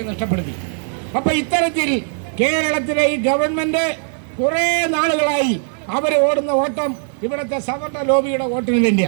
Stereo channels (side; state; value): left; silent; 66 dB below the other